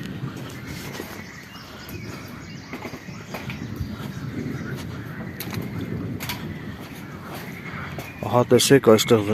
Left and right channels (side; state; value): both; identical; correlation 1.00